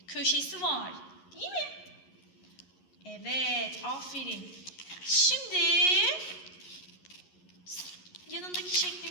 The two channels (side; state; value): right; late; 11 ms